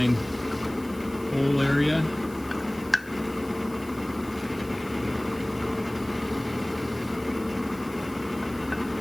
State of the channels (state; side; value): noise; left; hiss, 22 dB below the sound